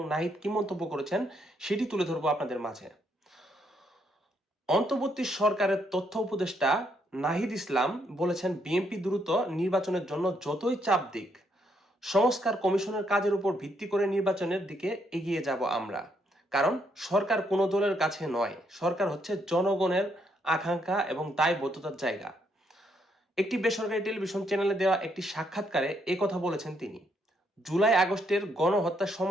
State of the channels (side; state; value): both; normal; correlation 0.74